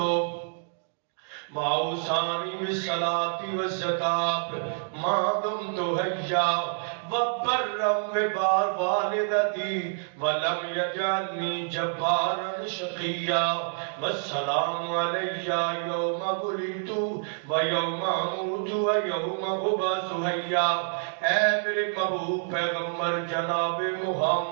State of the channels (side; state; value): left; silent; digital silence